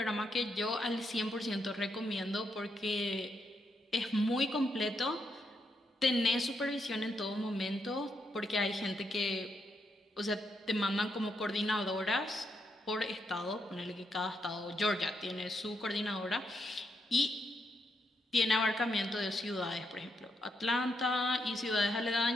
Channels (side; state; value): both; normal; correlation 0.80